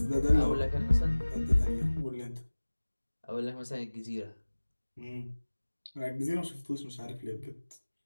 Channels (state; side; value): inverted; both; correlation -1.00